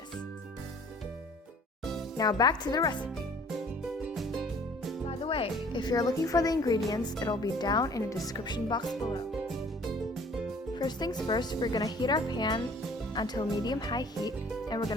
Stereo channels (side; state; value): both; normal; correlation 0.53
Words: Now back to the recipe. By the way, if you're looking for the ingredients, it'll be down in the description box below. First things first, we're gonna heat our pan until medium-high heat, and we're